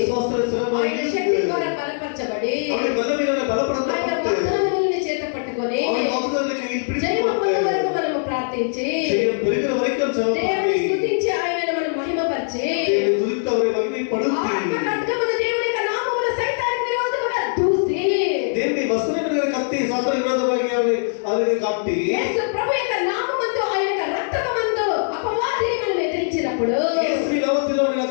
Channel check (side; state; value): right; silent; digital silence